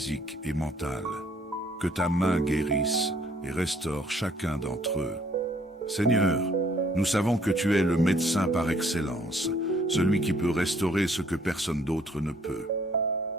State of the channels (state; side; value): normal; both; correlation 0.62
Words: et mentales. Que ta main guérisse et restaure chacun d'entre eux. Seigneur, nous savons que tu es le médecin par excellence, celui qui peut restaurer ce que personne d'autre ne peut.